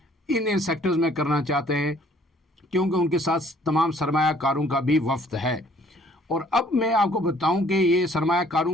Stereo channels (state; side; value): normal; both; correlation 0.59